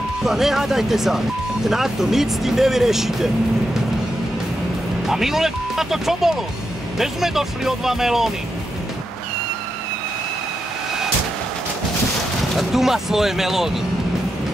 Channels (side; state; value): both; normal; correlation 0.85